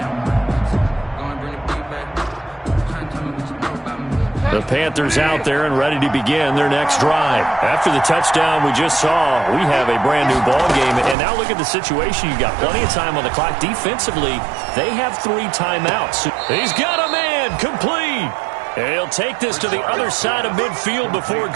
The Panthers out there and ready to begin their next drive. After the touchdown we just saw, we have a brand new ball game. And now look at the situation. You've got plenty of time on the clock. Defensively, they have 3 timeouts. He's got a man complete. And he'll take this to the other side of midfield before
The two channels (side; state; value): left; drops out; at 11.2 s